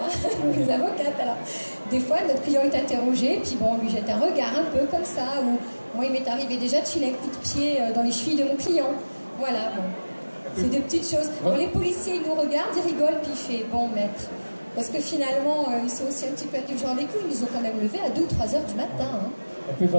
les avocates. Alors, des fois, notre client est interrogé, puis bon, on lui jette un regard un peu comme ça, ou moi, il m'est arrivé déjà de filer un coup de pied dans les chevilles de mon client. Voilà, bon. C'est des petites choses. Bon, les policiers, ils nous regardent, ils rigolent, puis ils font, bon, maître. Parce que finalement, ils sont aussi un petit peu indulgents avec nous. Ils nous ont quand même levé à 2 ou 3 heures du matin. Hein. Et puis,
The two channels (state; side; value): inverted; both; correlation -1.00